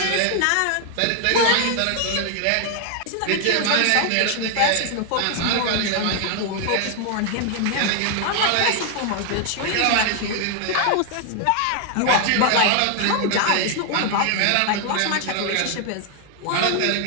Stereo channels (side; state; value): both; different; correlation 0.00